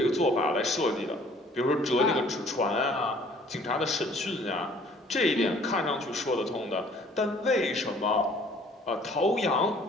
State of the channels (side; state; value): both; normal; correlation 0.56